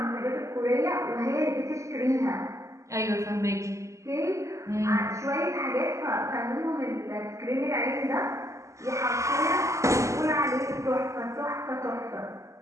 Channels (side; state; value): left; late; 0.15 ms